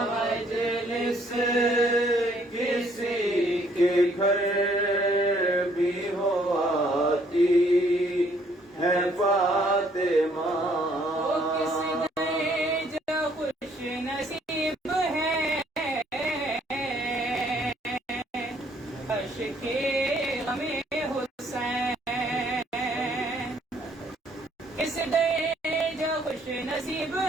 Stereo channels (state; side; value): normal; both; correlation 0.64